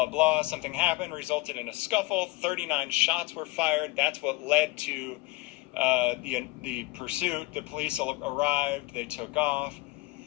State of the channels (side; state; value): right; quieter; 20.7 dB